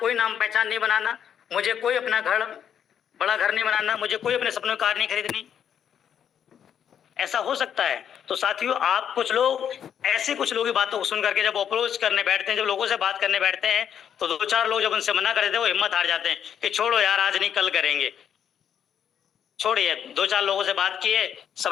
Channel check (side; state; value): right; quieter; 8.8 dB